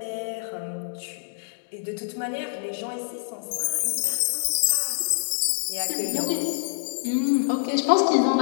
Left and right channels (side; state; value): right; silent; digital silence